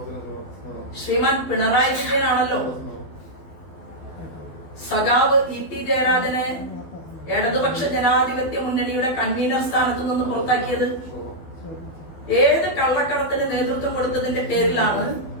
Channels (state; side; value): late; right; 12 ms